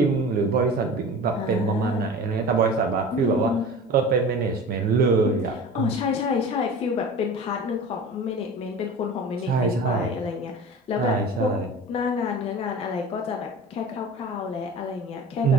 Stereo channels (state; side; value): normal; both; correlation 0.37